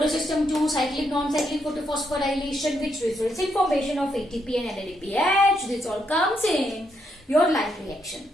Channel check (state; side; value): normal; both; correlation 0.78